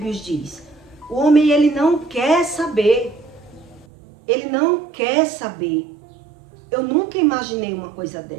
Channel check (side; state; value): left; drops out; at 3.9 s